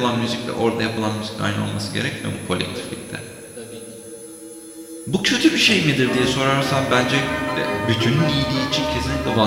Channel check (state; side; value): identical; both; correlation 1.00